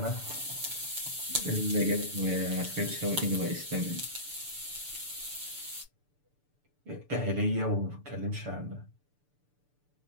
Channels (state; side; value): late; left; 6.8 ms